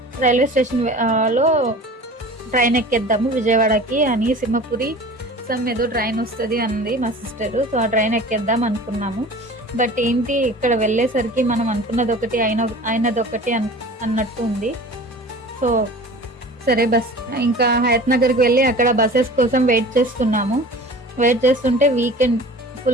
రైల్వే స్టేషన్ లో ట్రైన్ ఎక్కేద్దాము విజయవాడకి అని. సింహపురి ఏదో ట్రైన్ వస్తుంది అంది మా సిస్టర్. సో ఆ ట్రైన్ ఎక్కేద్దాం అనుకున్నాము. బట్ ఏంటి ఇక్కడ వెళ్ళేసరికి మనం అనుకున్నది ఒకటి అయినది ఒకటి అన్నట్టు ఉంది. సో సరే ఇంకా హయత్ నగర్కి వెళ్ళి అక్కడ బస్సెస్ కోసం వెయిట్ చేస్తుంటే వీకెండ్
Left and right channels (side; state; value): both; normal; correlation 0.40